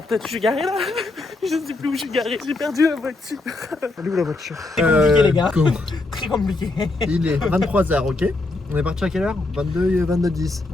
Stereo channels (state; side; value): quieter; right; 3.1 dB